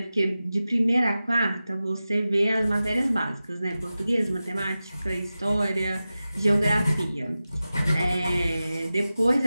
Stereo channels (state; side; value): inverted; both; correlation -0.95